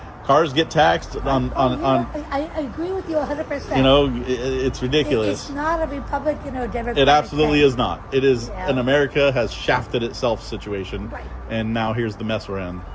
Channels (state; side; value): identical; both; correlation 1.00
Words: Cars get taxed on. I agree with you 100%. You know, it's ridiculous. It's not a Republican or Democrat. It absolutely thing. is not. It is Yeah. an America has shafted itself situation, Right. and now here's the mess we're in.